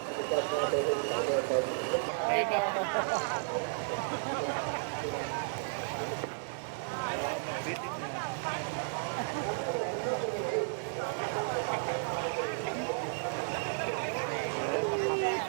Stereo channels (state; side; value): silent; left; digital silence